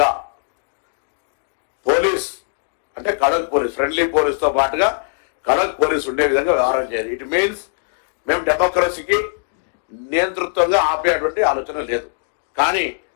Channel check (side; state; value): right; silent; digital silence